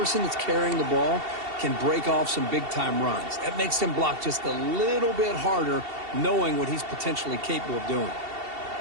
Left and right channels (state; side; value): late; left; 2.7 ms